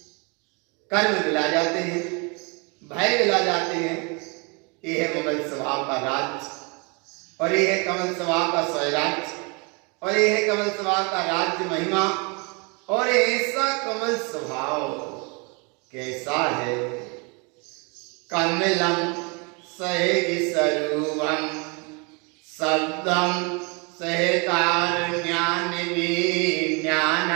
कर्म मिला जाते हैं, भय मिला जाते हैं। ये है ममल स्वभाव का राज और ये है कमल स्वभाव का स्वराज और ये है कमल स्वभाव का राज्य महिमा। और ऐसा कमल स्वभाव कैसा है? कमलम सहज स्वरूपम शब्दम सहकार ज्ञान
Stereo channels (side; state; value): left; quieter; 31.7 dB